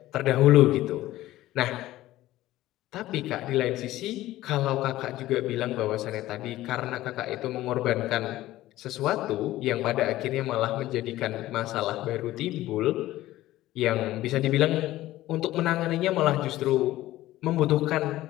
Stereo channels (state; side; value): quieter; right; 15.7 dB